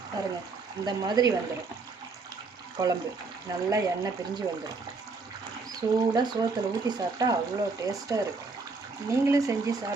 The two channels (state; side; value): quieter; left; 4.1 dB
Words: பாருங்க. இந்த மாதிரி வந்துடும் குழம்பு, நல்லா எண்ணெய் பிரிஞ்சு வந்துடும். சூடாக சோத்தில் ஊற்றி சாப்பிட்டா அவ்வளோ டேஸ்ட்டாக இருக்கும். நீங்களும் செஞ்சு